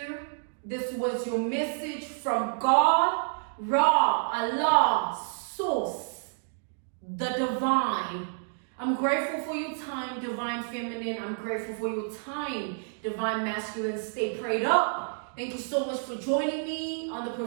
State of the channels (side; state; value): left; silent; digital silence